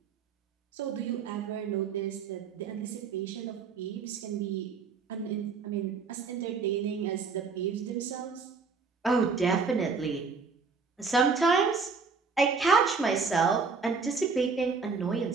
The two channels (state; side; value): quieter; left; 4.9 dB